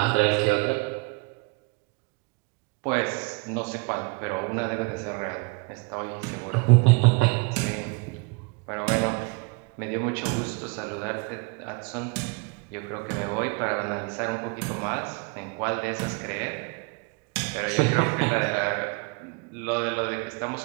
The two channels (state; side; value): quieter; left; 29.7 dB